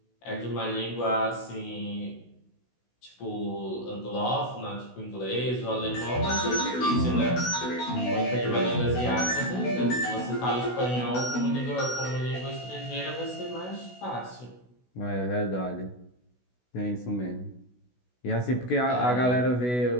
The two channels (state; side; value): late; right; 16 ms